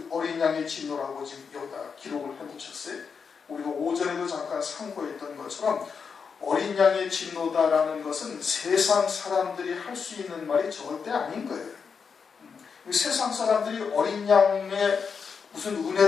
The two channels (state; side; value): quieter; right; 5.9 dB